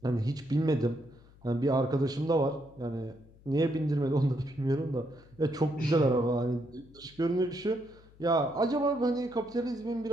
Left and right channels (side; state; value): left; noise; hum, 25 dB below the sound